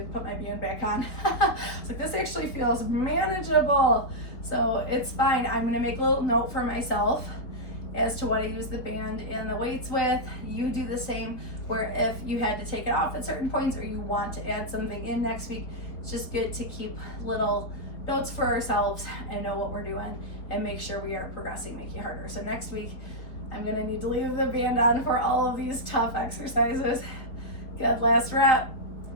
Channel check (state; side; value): late; right; 4.1 ms